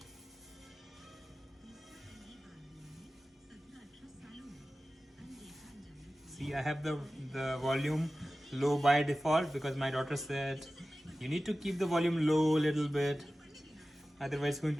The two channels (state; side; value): normal; both; correlation 0.95